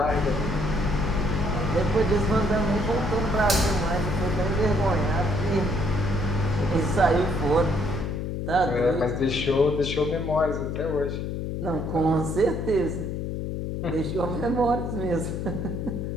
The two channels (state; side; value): noise; left; hum, 3 dB below the sound